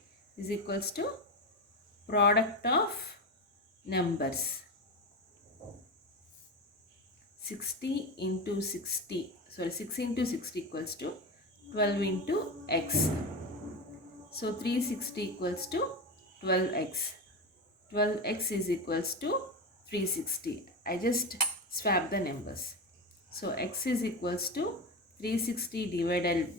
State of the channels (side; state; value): both; normal; correlation 0.20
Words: is equals to product of numbers. 60 into 60, sorry, 6 into 60 equals to 12 into x. So 360 equals to 12x. 12x is equals to 360. I just swap the numbers. So x is equals to 360